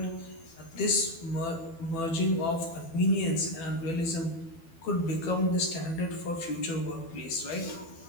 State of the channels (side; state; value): right; late; 12 ms